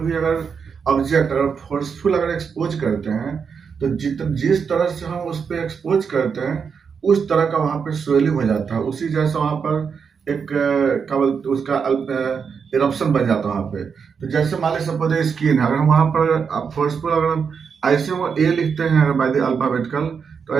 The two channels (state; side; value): quieter; left; 6.2 dB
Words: अगर ऑब्जेक्ट अगर फोर्सफुल अगर एक्सपोज करते हैं, तो जिस तरह से हम उस पर एक्सपोज करते हैं उस तरह का वहाँ पे स्वेलिंग हो जाता है, उसी जैसा वहाँ पर एक क्या बोलते उसका इरप्शन बन जाता है वहाँ पे। तो जैसे मान लीजिए सपोज स्किन है, अगर हम वहाँ पर फोर्सफुल अगर हम ऐसे वो ए लिखते हैं अगर बाय द अल्फाबेटिकल, तो